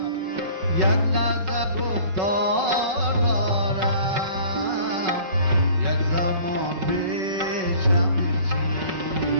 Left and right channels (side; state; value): left; late; 5.3 ms